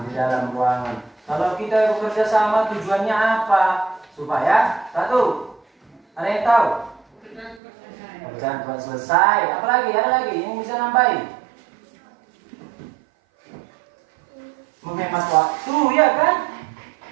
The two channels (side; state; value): left; drops out; at 7.6 s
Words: di dalam ruangan. Kalau kita bekerja sama tujuannya apa? Supaya satu, ada yang tahu? Pekerjaan cepat selesai. Apalagi? Ada lagi yang bisa nambahin? Menghemat waktu, ya kan?